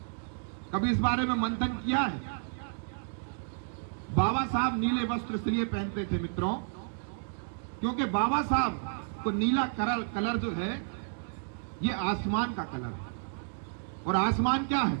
कभी इस बारे में मंथन किया है? बाबा साहब नीले वस्त्र इसलिए पहनते थे मित्रों, क्योंकि बाबा साहब को नीला कलर जो है ये आसमान का कलर है, और आसमान क्या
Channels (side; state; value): left; silent; digital silence